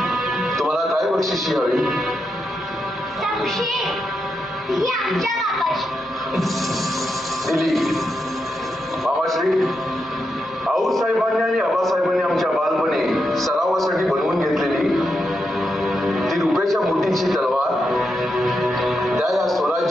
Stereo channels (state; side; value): normal; both; correlation 0.85